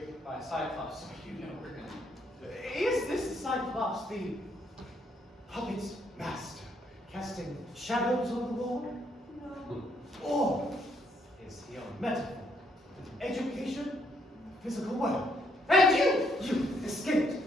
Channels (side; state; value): both; normal; correlation 0.72